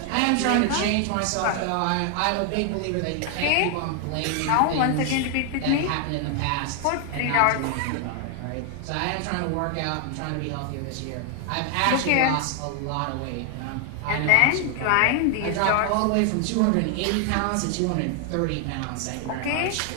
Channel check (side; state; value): both; different; correlation 0.00